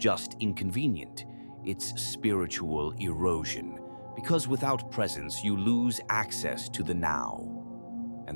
inconvenient, it's spiritual erosion. Because without presence, you lose access to the now.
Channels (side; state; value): both; inverted; correlation -1.00